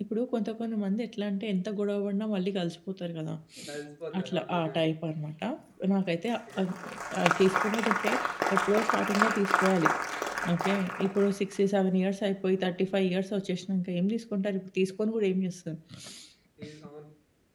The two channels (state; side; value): identical; both; correlation 1.00